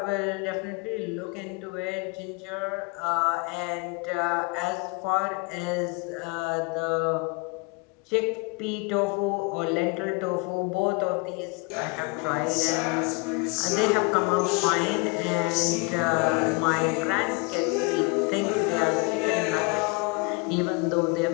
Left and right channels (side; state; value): right; quieter; 30.1 dB